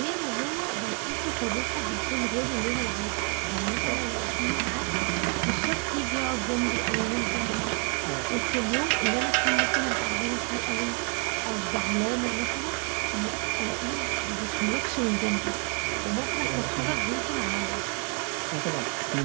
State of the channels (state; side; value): quieter; left; 37.6 dB